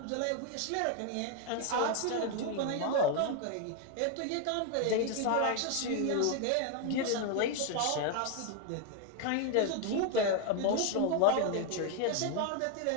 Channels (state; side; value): different; both; correlation 0.01